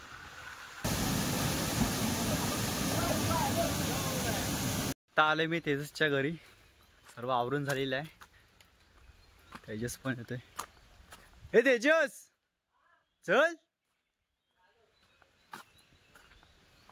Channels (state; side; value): identical; both; correlation 1.00